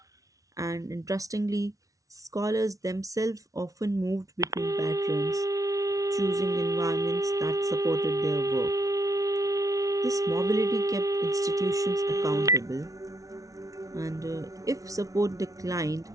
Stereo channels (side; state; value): left; late; 0.17 ms